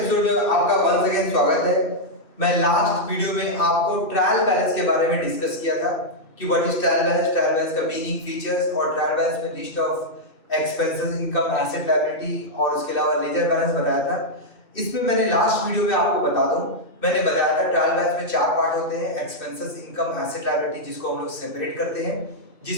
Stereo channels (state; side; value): late; right; 2.3 ms